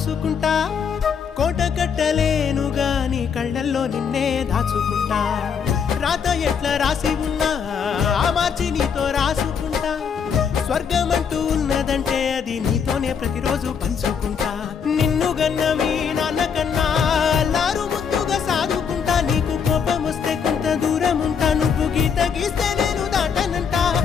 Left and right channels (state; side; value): quieter; right; 6.8 dB